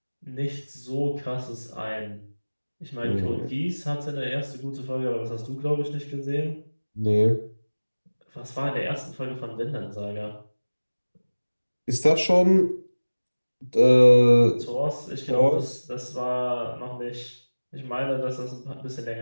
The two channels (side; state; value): both; inverted; correlation -1.00